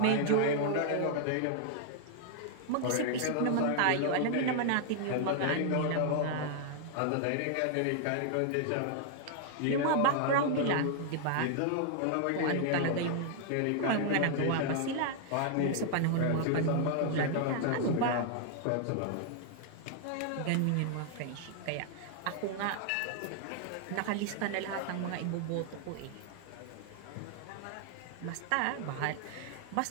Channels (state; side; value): different; both; correlation 0.00